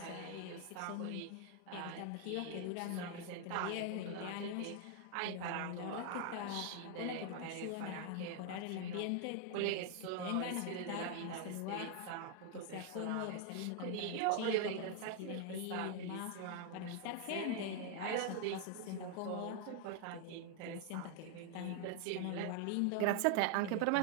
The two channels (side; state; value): both; different; correlation 0.00